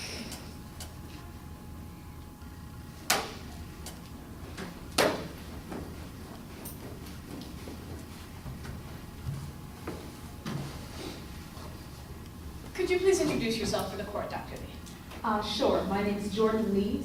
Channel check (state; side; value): identical; both; correlation 1.00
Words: Could you please introduce yourself for the court, Dr. Lee? Sure. My name is Jordan Lee,